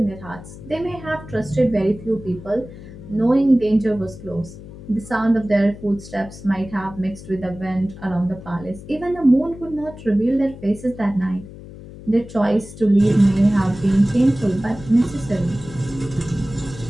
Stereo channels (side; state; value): left; noise; hum, 15 dB below the sound